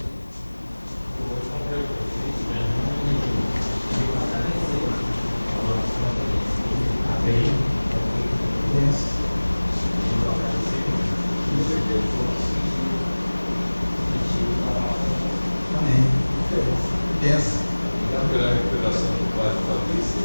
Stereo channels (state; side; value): inverted; both; correlation -1.00